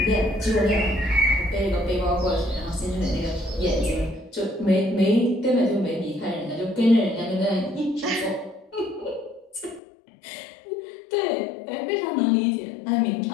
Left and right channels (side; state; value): right; drops out; at 9.8 s